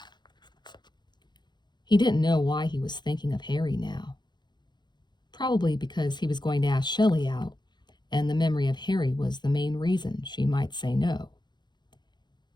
He didn't know why he was thinking of Harry now. Probably because he was going to ask Shelly out, and the memory of Harry was the main reason she might say no.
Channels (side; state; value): right; late; 0.21 ms